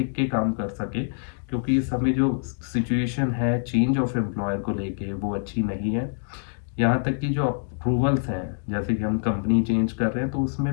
के काम कर सकें। क्योंकि इस समय जो सिचुएशन है चेंज ऑफ एम्प्लॉयर को लेके वो अच्छी नहीं है। यहाँ तक कि जो अप्रूवल्स हैं, जैसे कि हम कंपनी चेंज कर रहे हैं तो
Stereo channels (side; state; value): right; silent; digital silence